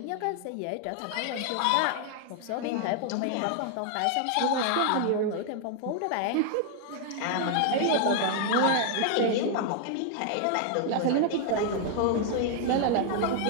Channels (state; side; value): different; both; correlation 0.00